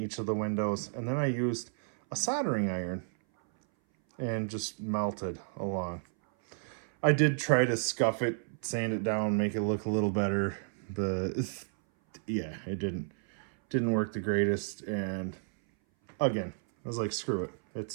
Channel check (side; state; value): left; silent; 57 dB below the other